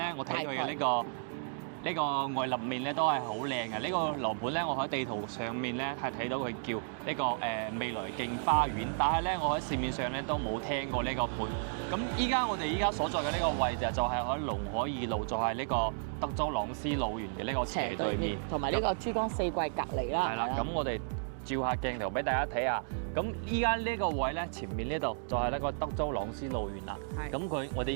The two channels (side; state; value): left; silent; digital silence